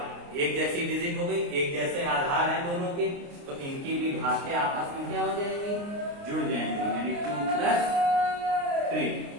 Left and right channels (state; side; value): late; left; 29 ms